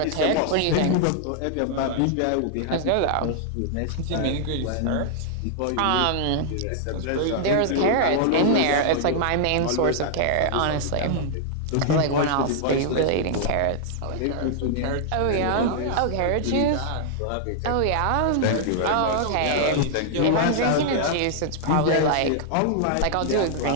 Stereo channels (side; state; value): both; different; correlation -0.01